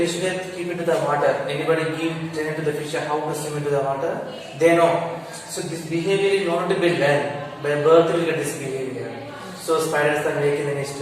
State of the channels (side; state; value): both; identical; correlation 1.00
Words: will keep into the water. Anybody give training to the fish how to swim into the water? They know. So this behavior is not to be learned. By birth we get this behavior. So spiders are making the nest,